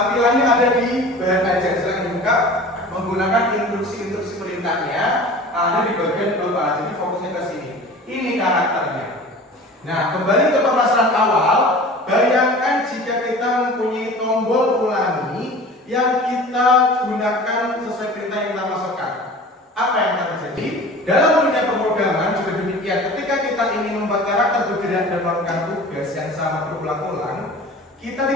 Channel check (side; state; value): both; normal; correlation 0.40